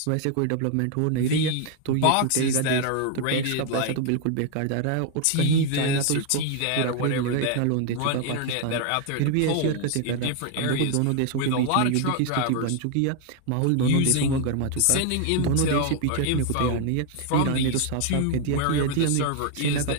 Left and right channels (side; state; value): both; different; correlation 0.00